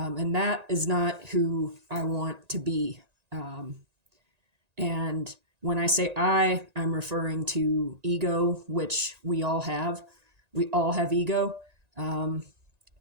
that is not who I want to be. Um, and when I say I'm referring to ego, which we all have. We all have ego. Um,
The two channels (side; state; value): left; late; 1.9 ms